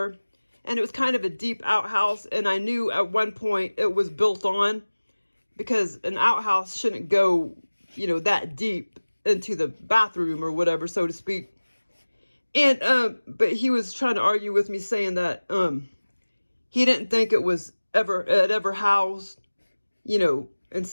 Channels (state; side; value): inverted; both; correlation -1.00